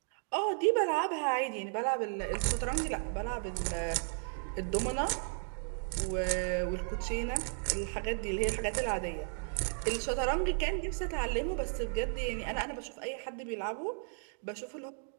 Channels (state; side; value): silent; left; 55 dB below the other